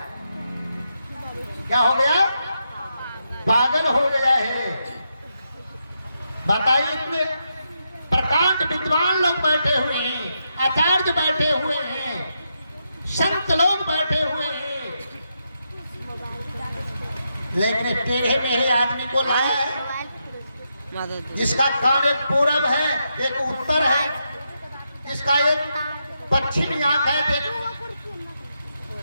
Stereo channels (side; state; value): both; inverted; correlation -0.83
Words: क्या हो गया? पागल हो गया है। बताइए, इतने प्रकांड विद्वान लोग बैठे हुए हैं, आचार्य बैठे हुए हैं, संत लोग बैठे हुए हैं, लेकिन टेढ़े मेढ़े आदमी को लाया है जिसका कान एक पूरब है, एक उत्तर है, इसका एक पश्चिमी आंख है, एक